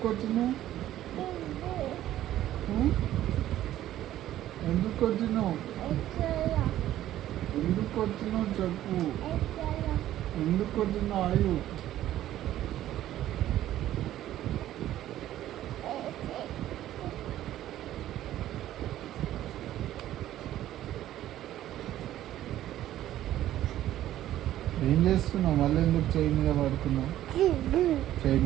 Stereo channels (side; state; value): left; quieter; 13.1 dB